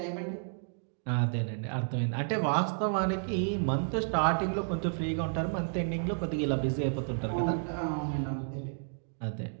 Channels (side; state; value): left; silent; digital silence